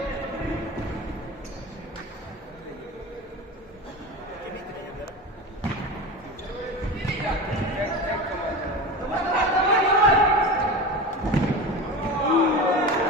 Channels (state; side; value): normal; both; correlation 0.28